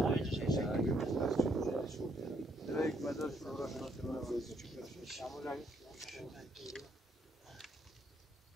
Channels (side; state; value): both; normal; correlation 0.70